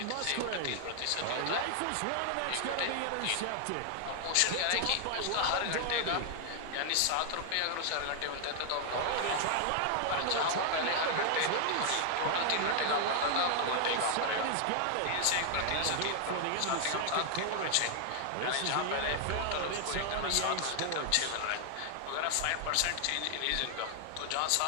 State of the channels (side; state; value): both; different; correlation 0.00